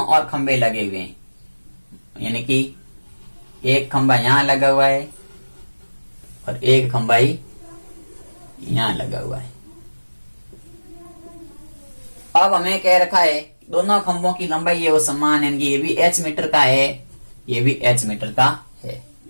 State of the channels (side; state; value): both; inverted; correlation -1.00